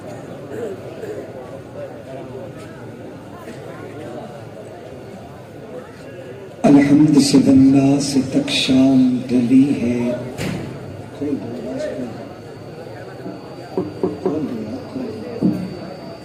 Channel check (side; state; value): both; identical; correlation 1.00